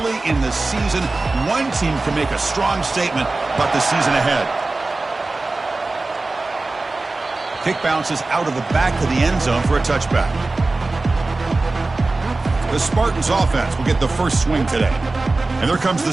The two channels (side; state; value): left; quieter; 3.3 dB